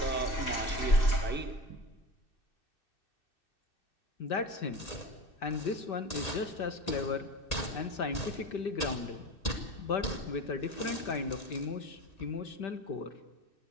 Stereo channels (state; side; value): late; right; 2.6 ms